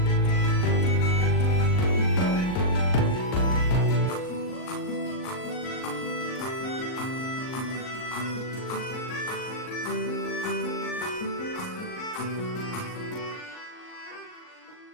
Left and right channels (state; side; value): late; right; 39 ms